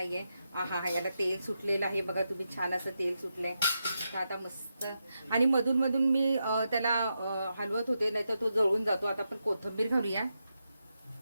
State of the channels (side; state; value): both; inverted; correlation -0.86